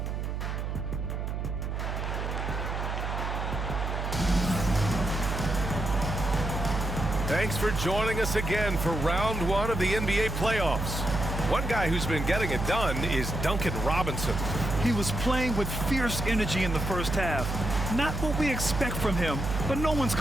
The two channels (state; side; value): noise; right; hum, 3 dB below the sound